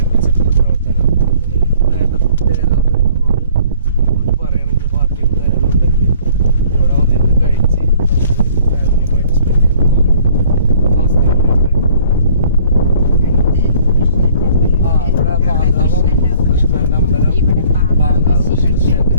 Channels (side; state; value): both; inverted; correlation -0.55